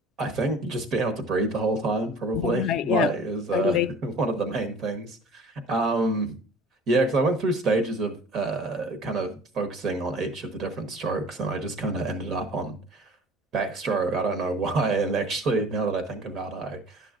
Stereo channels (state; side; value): normal; both; correlation 0.46